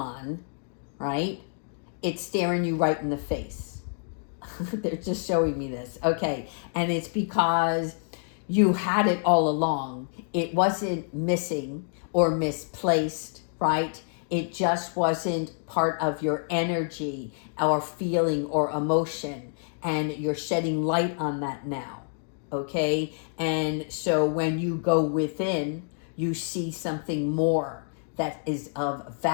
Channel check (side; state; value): right; silent; 60 dB below the other